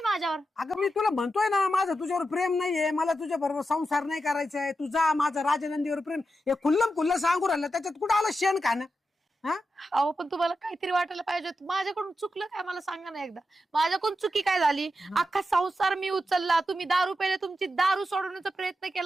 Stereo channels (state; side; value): normal; both; correlation 0.88